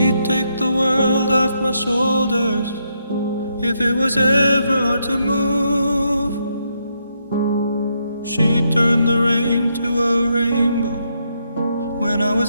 take the world off my shoulders if it was ever hard to move. She'd turn the rain to a rainbow when I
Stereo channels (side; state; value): both; inverted; correlation -0.78